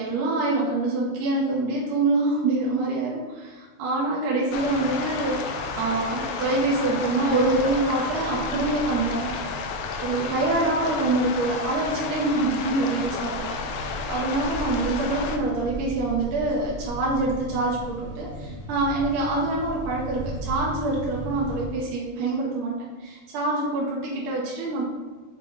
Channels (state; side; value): normal; both; correlation 0.05